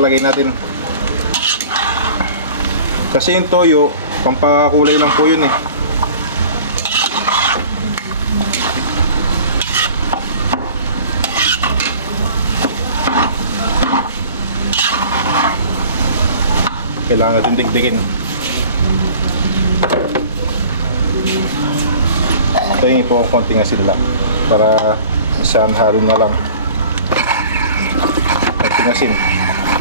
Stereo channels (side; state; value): both; inverted; correlation -0.44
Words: natin. Kasi yung toyo, pampakulay lang po yun eh. Kailangan natin digdigin. Tingin po konting asin lang para isang halo na lang. Konting asin.